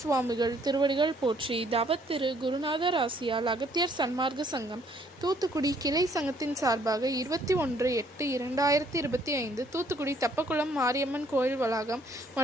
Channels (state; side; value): normal; both; correlation 0.64